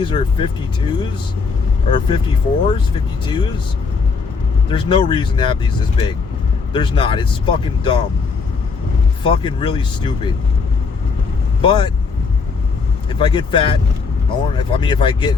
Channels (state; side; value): quieter; right; 4.9 dB